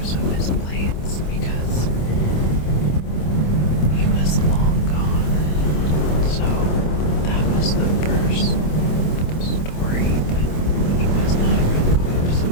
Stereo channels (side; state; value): right; late; 26 ms